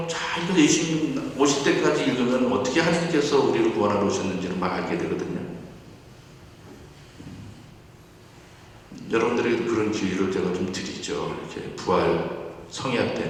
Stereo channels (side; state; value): both; identical; correlation 1.00